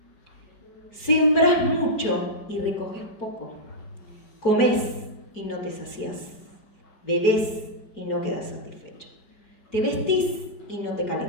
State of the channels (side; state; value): right; late; 4.4 ms